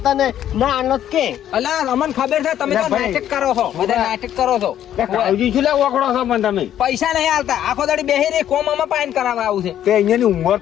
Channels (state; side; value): quieter; right; 11.0 dB